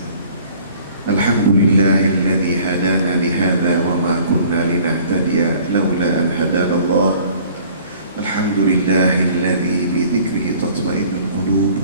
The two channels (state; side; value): inverted; both; correlation -0.52